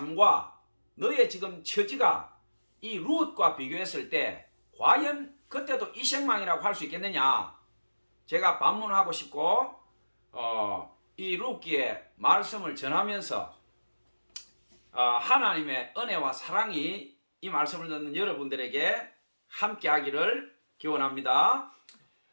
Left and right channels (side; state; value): both; inverted; correlation -1.00